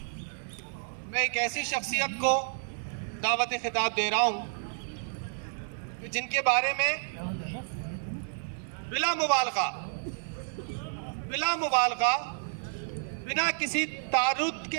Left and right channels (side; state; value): left; silent; digital silence